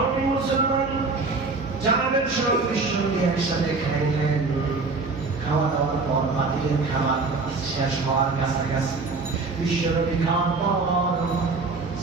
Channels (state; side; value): quieter; left; 3.9 dB